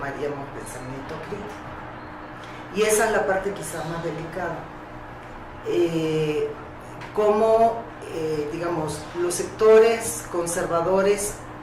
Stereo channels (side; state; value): both; identical; correlation 1.00